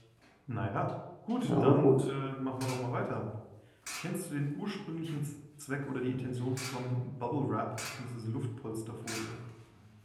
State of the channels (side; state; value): both; identical; correlation 1.00